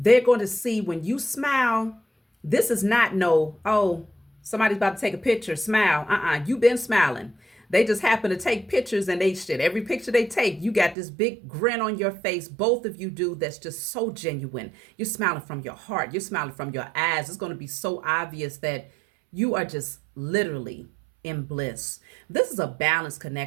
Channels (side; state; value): left; drops out; at 11.0 s